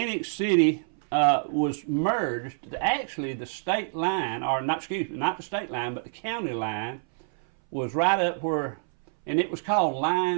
City was merged. Actually, the state line, or not the state line, but the county line was right up where, and it was called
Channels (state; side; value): silent; left; 59 dB below the other